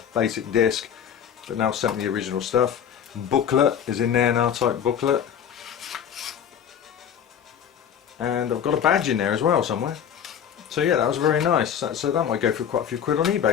basic disc, but now sent me the original stuff. Booklet is in there, an R-Type booklet. And I've got a badge in there as well somewhere. So yeah, that was very nice. So that might go for quite a few quid on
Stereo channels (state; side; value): quieter; right; 8.6 dB